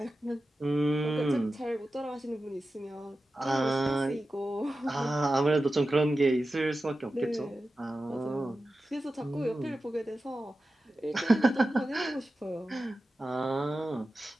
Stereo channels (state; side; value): normal; both; correlation 0.93